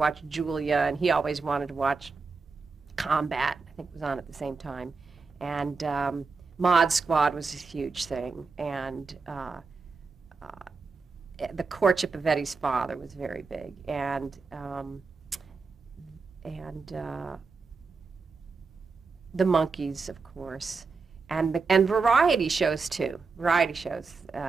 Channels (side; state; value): left; quieter; 4.5 dB